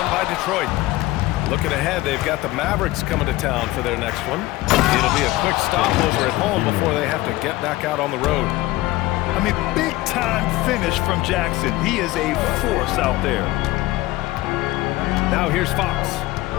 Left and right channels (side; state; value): right; quieter; 18.3 dB